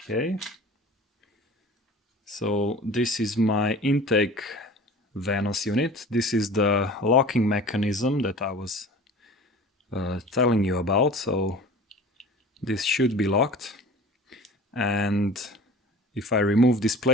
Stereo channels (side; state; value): both; normal; correlation 0.41